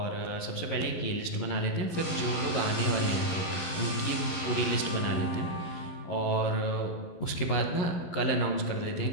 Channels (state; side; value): late; right; 11 ms